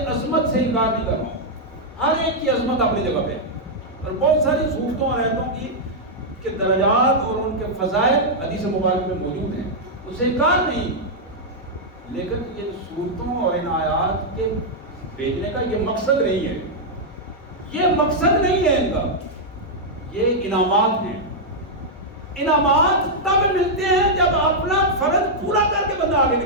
عظمت سے انکار نہیں کر رہا ہوں، ہر ایک کی عظمت اپنی جگہ پہ، اور بہت ساری صورتوں اور آیتوں کی کے درجات اور ان کے فضائل حدیث مبارک میں موجود ہیں، اس سے انکار نہیں، لیکن یہ صورتوں اور ان آیات کے بھیجنے کا یہ مقصد نہیں ہے، یہ مقصد نہیں ہے ان کا، یہ انعامات ہیں۔ انعامات تب ملتے ہیں جب اپنا فرض پورا کر کے بندہ آگے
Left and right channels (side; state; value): both; normal; correlation -0.05